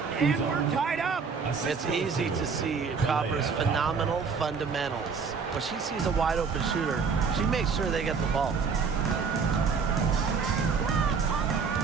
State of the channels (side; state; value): left; quieter; 5.5 dB